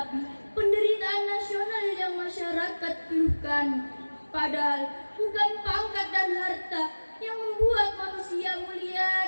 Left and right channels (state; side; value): inverted; both; correlation -1.00